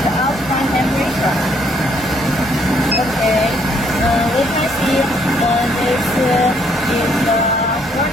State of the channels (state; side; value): normal; both; correlation 0.68